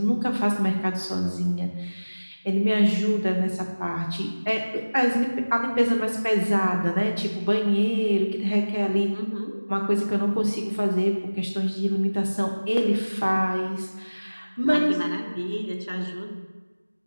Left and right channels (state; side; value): inverted; both; correlation -1.00